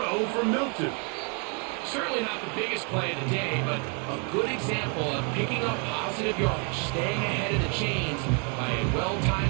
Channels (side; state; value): left; quieter; 37.3 dB